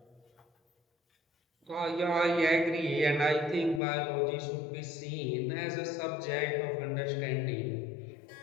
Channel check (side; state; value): right; drops out; at 3.8 s